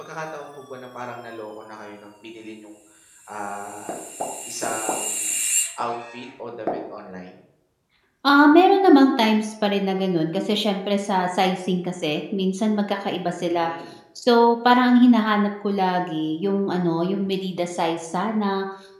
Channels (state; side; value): identical; both; correlation 1.00